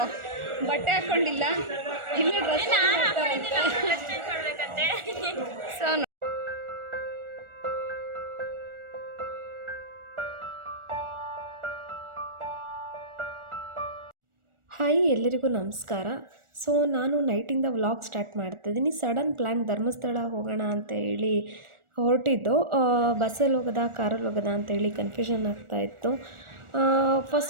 ಬಟ್ಟೆ ಹಾಕೊಂಡಿಲ್ಲ, ಇಲ್ಲೇ ಡ್ರೆಸ್ ಸೊ ಹಾಯ್, ಎಲ್ಲರಿಗೂ ನಮಸ್ಕಾರ. ಸೊ ನಾನು ನೈಟಿಂದ ವ್ಲಾಗ್ ಸ್ಟಾರ್ಟ್ ಮಾಡ್ತಾಯಿದ್ದೀನಿ. ಸಡನ್ ಪ್ಲ್ಯಾನ್ ಧರ್ಮಸ್ಥಳ ಹೋಗೋಣ ಅಂತ ಹೇಳಿ ಹೊರಟಿದ್ದು. ಬಸ್ಸಲ್ಲಿ ಹೋಗೋದಾ ಕಾರಲ್ಲಿ ಹೋಗೋದಾ ಅಂತೇಳಿ ಕನ್ಫ್ಯೂಷನ್ ಆಗ್ತಾಯಿತ್ತು.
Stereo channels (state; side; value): late; left; 1.4 ms